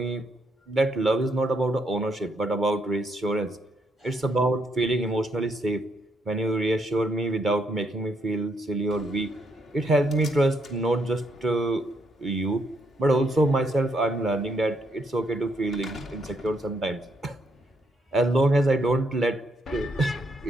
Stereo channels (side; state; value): both; normal; correlation 0.75